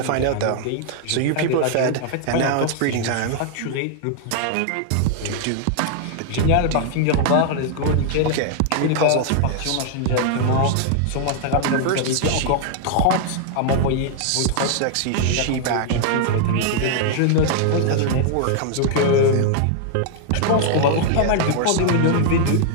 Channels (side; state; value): both; different; correlation 0.00